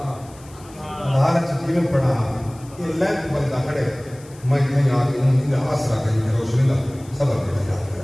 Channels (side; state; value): left; noise; hiss, 24 dB below the sound